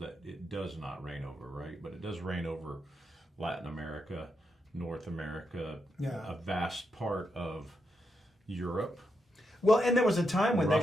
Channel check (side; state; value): both; normal; correlation 0.83